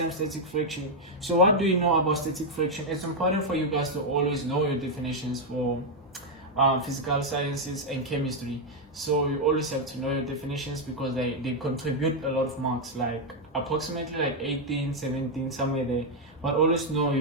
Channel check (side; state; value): both; normal; correlation 0.00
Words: static friction. So what do you know about static friction? It's important for you guys to always know your definitions for physical sciences and chemistry. So you always have to know your definitions because they contribute a lot of marks, like approximately like 18, 17, somewhere there. But always know